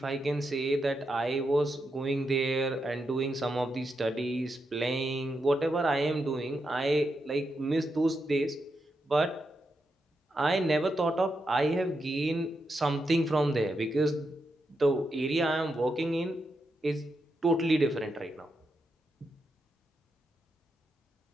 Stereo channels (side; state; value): both; normal; correlation 0.85